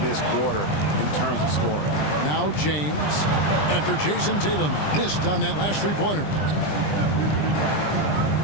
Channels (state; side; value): late; right; 20 ms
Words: this quarter in terms of scoring. Now James, after Jason Tatum missed on that last three-pointer.